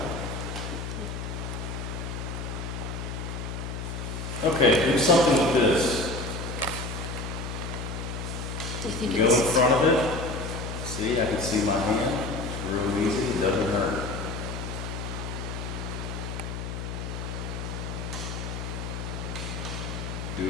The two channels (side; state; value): left; noise; hum, 5 dB below the sound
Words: now. Okay, do something with this. Do you think Go in it's... front of it. See, I can see my hand. It's real easy. It doesn't hurt. Do